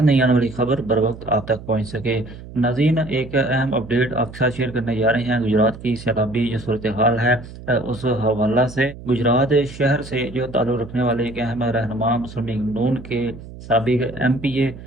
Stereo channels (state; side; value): noise; right; hum, 15 dB below the sound